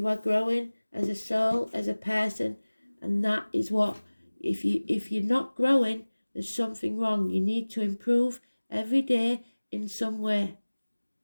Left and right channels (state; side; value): inverted; both; correlation -1.00